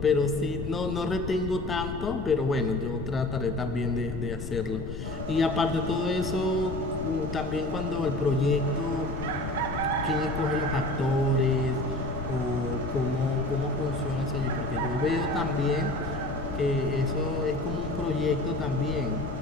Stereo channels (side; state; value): left; noise; rumble, 7 dB below the sound